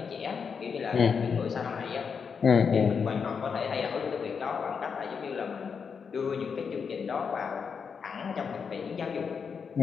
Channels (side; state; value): right; quieter; 6.1 dB